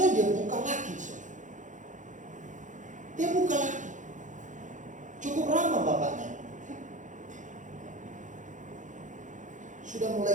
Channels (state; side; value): late; left; 0.36 ms